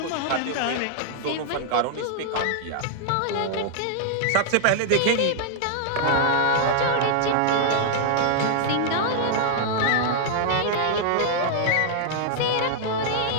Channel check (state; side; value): different; both; correlation -0.01